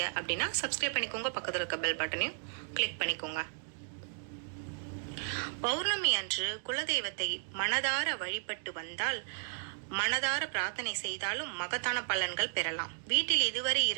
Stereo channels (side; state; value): left; silent; digital silence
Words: அப்படின்னா சப்ஸ்கிரைப் பண்ணிக்கோங்க, பக்கத்தில் இருக்க பெல் பட்டனையும் கிளிக் பண்ணிக்கோங்க. பௌர்ணமி அன்று குலதெய்வத்தை மனதார வழிபட்டு வந்தால், மனதார பிரார்த்தனை செய்தாலும் மகத்தான பலன்கள் பெறலாம். வீட்டில் இதுவரை